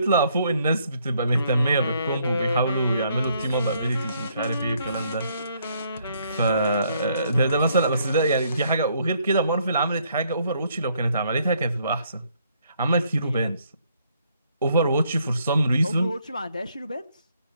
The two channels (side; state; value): both; inverted; correlation -0.69